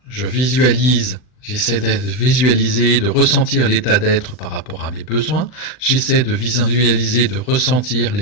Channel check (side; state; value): right; late; 39 ms